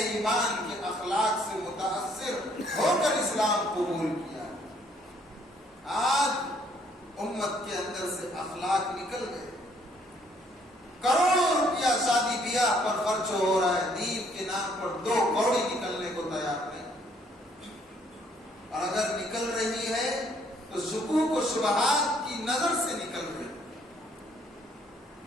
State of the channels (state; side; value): normal; both; correlation 0.65